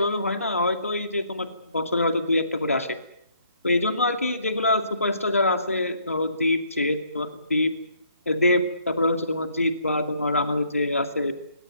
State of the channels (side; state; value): both; inverted; correlation -0.66